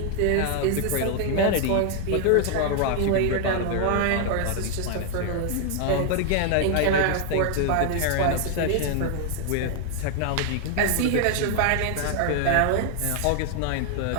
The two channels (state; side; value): different; both; correlation 0.00